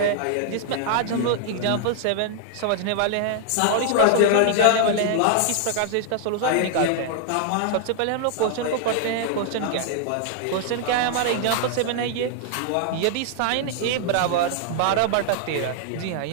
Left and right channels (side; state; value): both; different; correlation -0.01